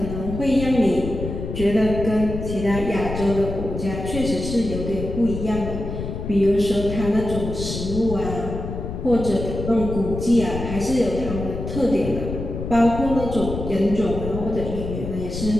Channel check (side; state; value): left; noise; rumble, 6 dB below the sound